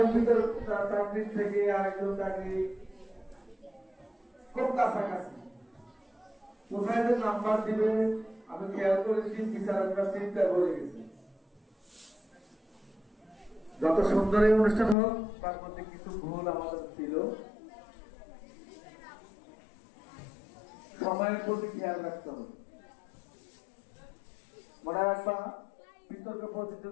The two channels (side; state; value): right; drops out; at 15.0 s